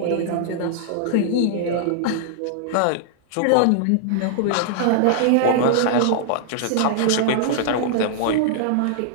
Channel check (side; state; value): both; different; correlation -0.01